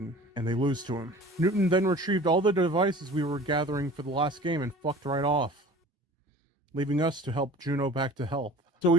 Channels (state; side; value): normal; both; correlation 0.43